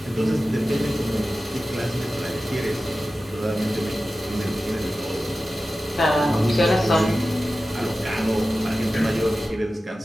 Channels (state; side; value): normal; both; correlation 0.94